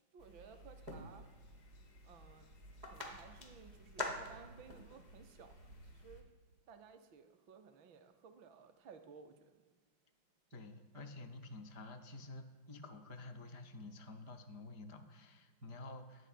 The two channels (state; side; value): late; left; 4.9 ms